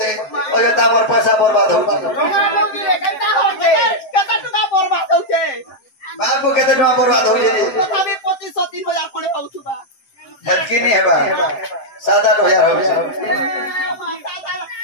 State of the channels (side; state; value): right; late; 7.7 ms